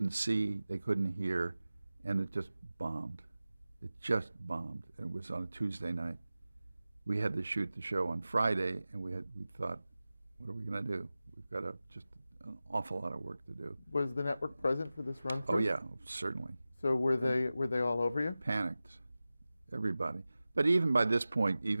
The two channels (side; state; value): both; inverted; correlation -0.96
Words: see, they couldn't hear, and it just bombed. It just bombed. It was on a Tuesday night. We had to shoot the show on Friday, and we thought, what are we going to do? We've got just an awful lot of work to do. Was the network present for this run through? Oh yeah, certainly. So were they all over you? Panicked, everybody. But even by this point,